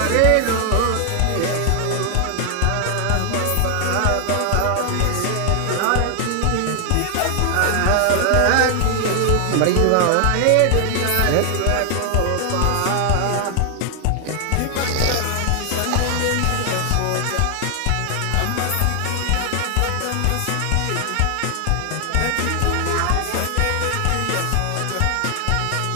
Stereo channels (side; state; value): both; different; correlation 0.00